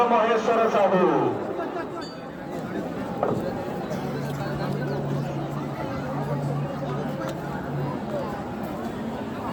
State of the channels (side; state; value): both; identical; correlation 1.00